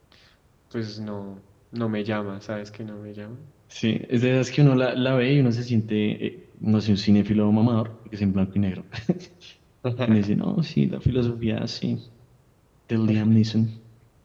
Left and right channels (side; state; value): both; identical; correlation 1.00